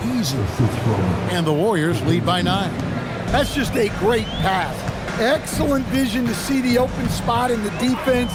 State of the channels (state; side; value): identical; both; correlation 1.00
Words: easy. And the Warriors lead by 9. That's just a great pass. Excellent vision to see the open spot in the defense